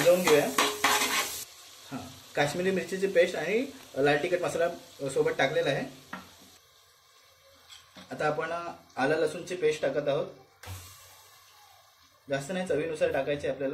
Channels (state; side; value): identical; both; correlation 1.00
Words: घेऊया. हां, काश्मीरी मिरचीची पेस्ट आणि लाल तिखट मसाला सोबत टाकलेला आहे. आता आपण आलं लसूणची पेस्ट टाकत आहोत. जास्त नाही, चवीनुसार टाकायचे